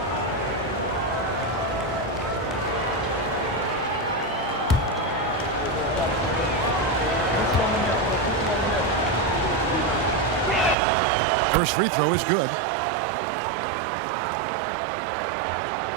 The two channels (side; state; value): left; drops out; at 10.8 s